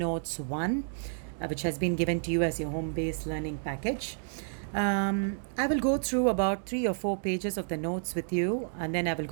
1, which has been given to you as your home based learning package. I will go through about 3 or 4 pages of the notes with you, and then I will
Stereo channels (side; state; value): left; silent; digital silence